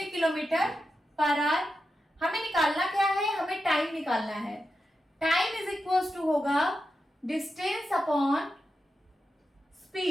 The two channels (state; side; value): normal; both; correlation 0.89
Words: किलोमीटर पर आवर। हमें निकालना क्या है, हमें टाइम निकालना है। टाइम इज इक्वल टू होगा डिस्टेंस अपॉन